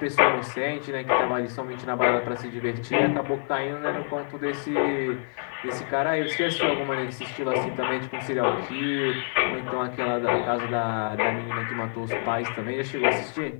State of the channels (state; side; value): silent; right; 55 dB below the other